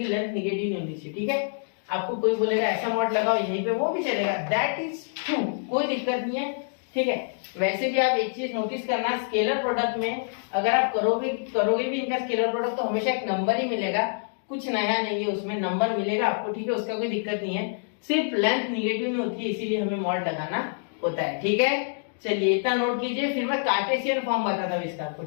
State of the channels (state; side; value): silent; right; digital silence